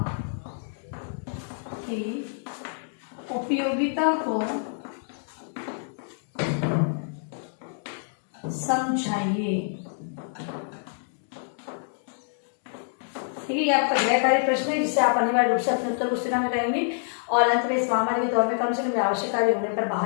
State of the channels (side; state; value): right; silent; digital silence